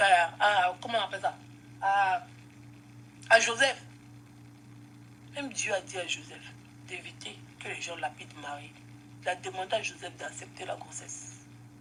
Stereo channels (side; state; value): both; identical; correlation 1.00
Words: comment on appelle ça, à Joseph. Même Dieu a dit à Joseph d'éviter que les gens lapident Marie. Il a demandé à Joseph d'accepter la grossesse.